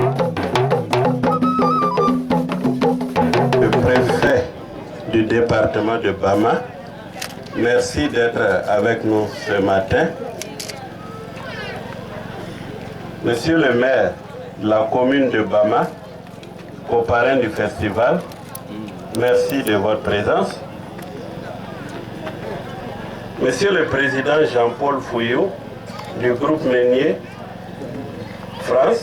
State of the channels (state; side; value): identical; both; correlation 1.00